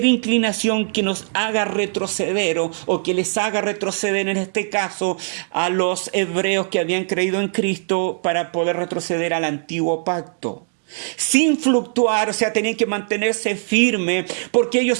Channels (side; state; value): left; silent; digital silence